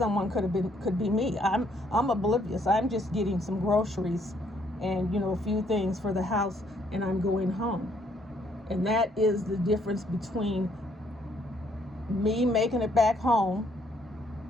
could be me. I'm oblivious. I'm just getting some groceries and a few things for the house, and I'm going home. And that is the difference between me making it back home,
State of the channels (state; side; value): normal; both; correlation 0.68